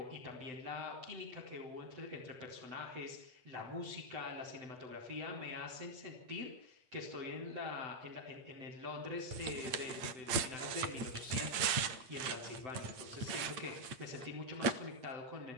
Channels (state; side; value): late; left; 8.6 ms